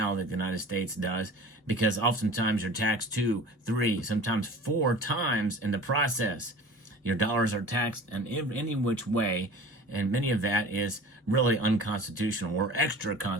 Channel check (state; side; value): normal; both; correlation 0.40